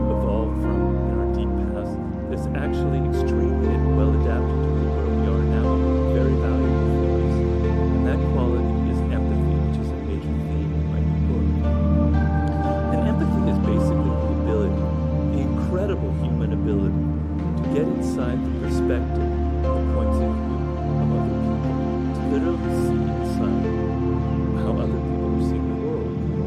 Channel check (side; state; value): both; identical; correlation 1.00